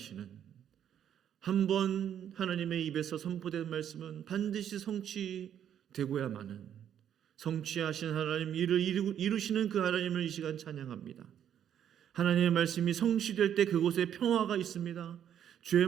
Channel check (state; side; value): quieter; left; 9.6 dB